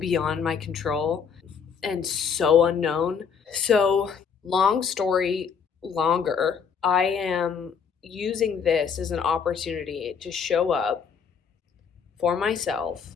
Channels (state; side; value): quieter; right; 6.6 dB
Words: my control and so unknown. So, long story longer, I am using this as an opportunity to show up for myself